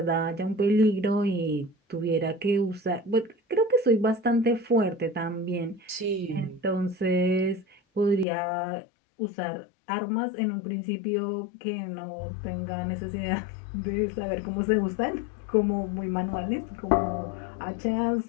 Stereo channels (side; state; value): right; drops out; at 8.2 s